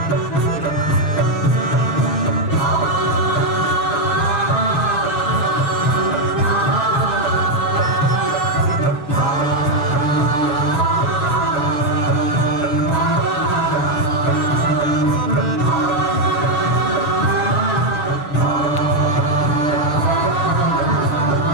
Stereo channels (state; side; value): late; right; 6.9 ms